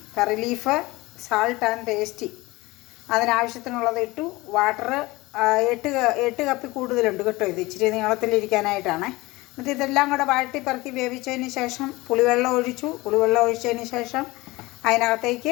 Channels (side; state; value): right; quieter; 21.1 dB